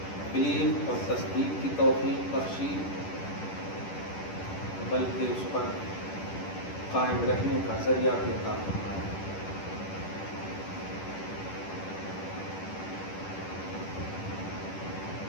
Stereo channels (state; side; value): late; right; 10 ms